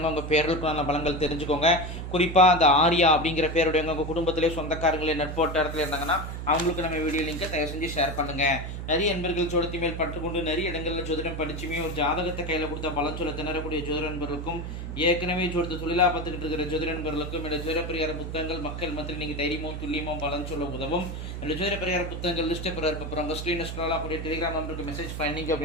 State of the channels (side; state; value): right; noise; hum, 6 dB below the sound